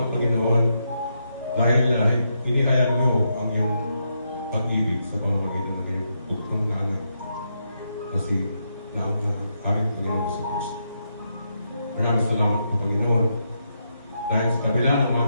Panginoon, dahil inihayag mo ang iyong pag-ibig sa pamamagitan ng iyong bugtong na anak na ang aming Panginoon sa Kristo. Maraming salamat po, Panginoon, dahil sa kabila ng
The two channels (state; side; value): inverted; both; correlation -0.81